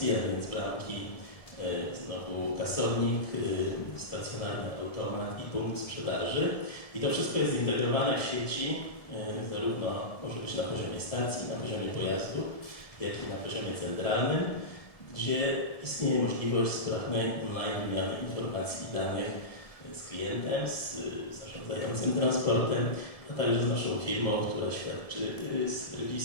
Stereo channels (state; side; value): late; right; 1.7 ms